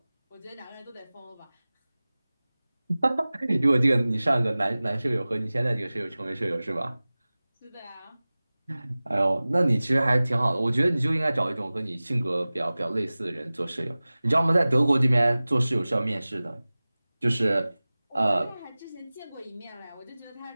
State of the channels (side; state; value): both; inverted; correlation -0.98